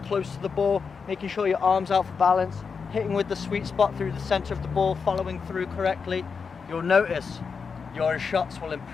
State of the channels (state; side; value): quieter; right; 5.5 dB